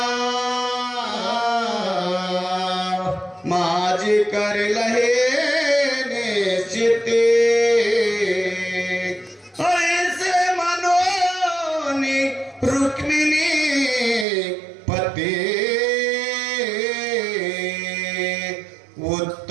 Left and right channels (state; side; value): drops out; left; at 14.2 s